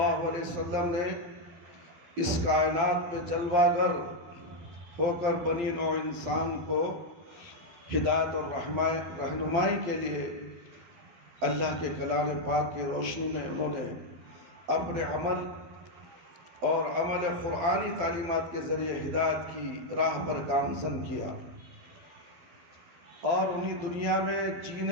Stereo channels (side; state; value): left; late; 12 ms